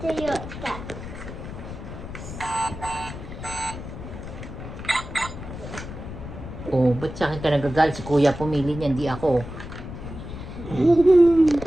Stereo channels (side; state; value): left; noise; rumble, 10 dB below the sound